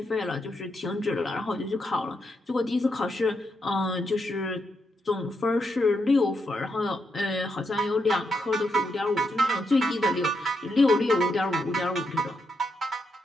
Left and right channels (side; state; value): both; normal; correlation 0.81